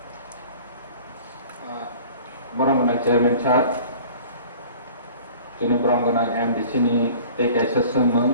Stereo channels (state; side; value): inverted; both; correlation -0.46